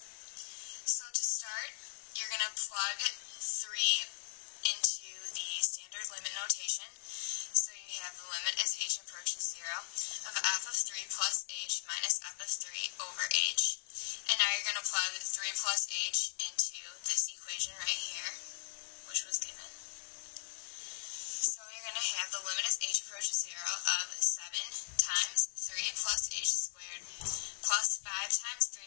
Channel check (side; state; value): right; silent; 53 dB below the other